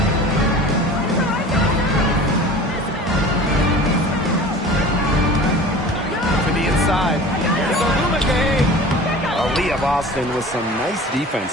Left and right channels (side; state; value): both; normal; correlation 0.40